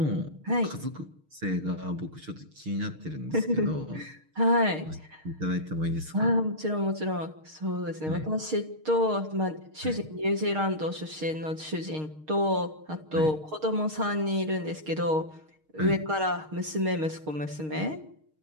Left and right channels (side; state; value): left; late; 6.5 ms